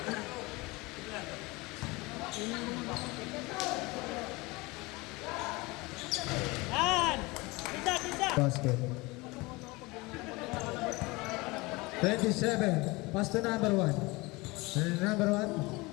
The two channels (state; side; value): quieter; right; 23.6 dB